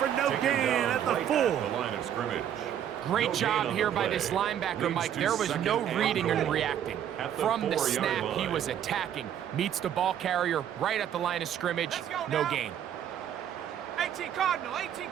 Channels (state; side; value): quieter; left; 9.9 dB